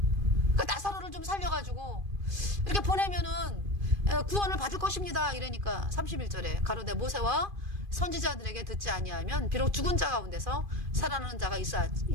그 나사로를 좀 살려가지고 이렇게 보내면은 구원을 받을 것입니다. 이러니까 31절에 가로되 모세와 선지자들에게 듣지 아니하면 비록 죽은 자 가운데서 살아나는 자가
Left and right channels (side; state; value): left; late; 2.5 ms